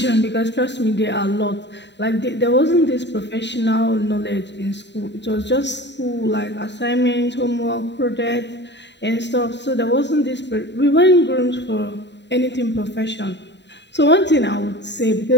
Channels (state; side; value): late; right; 0.52 ms